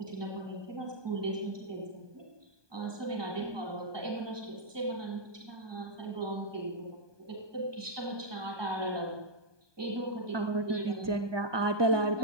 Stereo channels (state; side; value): late; left; 1.2 ms